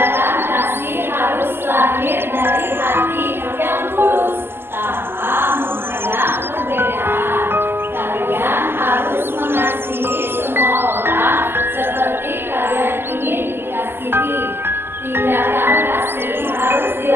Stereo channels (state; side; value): late; left; 0.11 ms